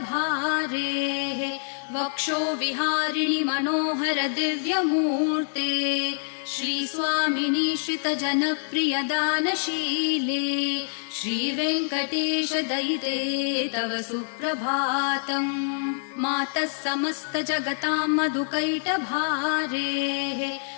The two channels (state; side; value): silent; right; digital silence